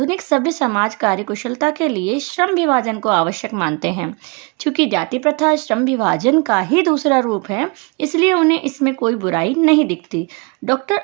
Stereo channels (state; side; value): quieter; left; 31.1 dB